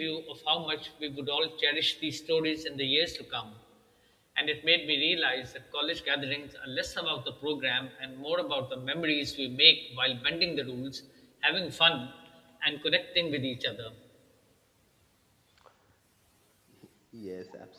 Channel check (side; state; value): both; identical; correlation 1.00